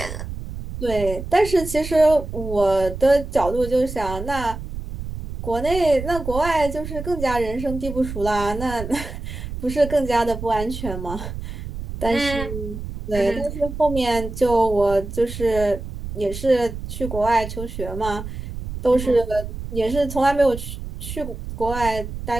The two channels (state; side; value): noise; right; rumble, 8 dB below the sound